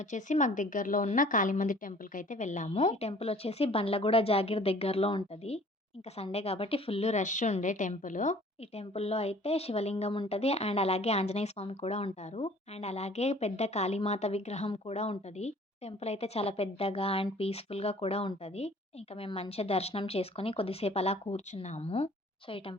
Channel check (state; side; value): normal; both; correlation 0.52